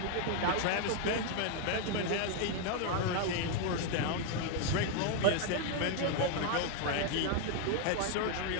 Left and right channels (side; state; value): both; different; correlation 0.00